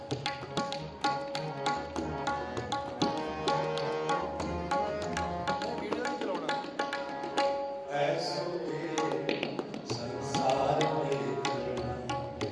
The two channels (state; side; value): identical; both; correlation 1.00